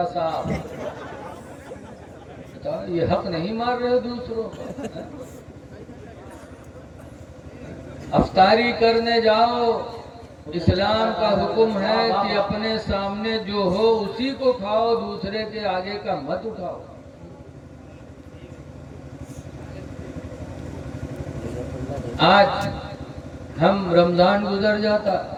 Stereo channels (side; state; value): both; identical; correlation 1.00